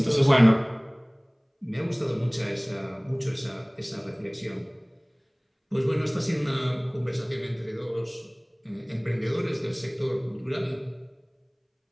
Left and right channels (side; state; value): both; identical; correlation 1.00